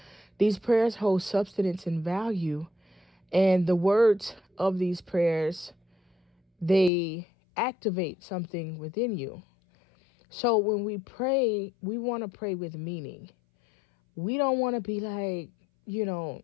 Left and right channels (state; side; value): drops out; right; at 6.9 s